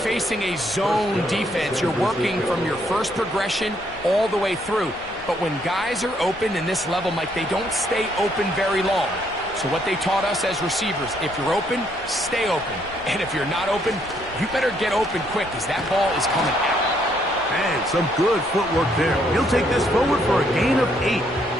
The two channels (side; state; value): left; noise; rumble, 21 dB below the sound